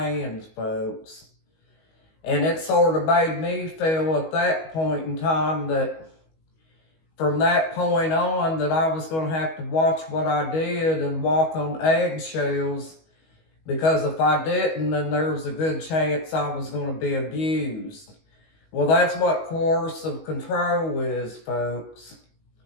folks. And it sort of made me feel at that point in time that from that point on that I was going to have to watch what I did and walk on eggshells, because if I didn't, then there was a good chance I was going to be abused. Well, that's what coercive control is, folks.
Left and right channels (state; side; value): late; right; 19 ms